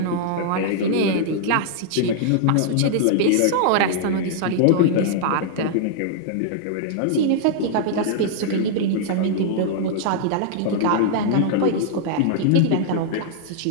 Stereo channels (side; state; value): both; different; correlation -0.01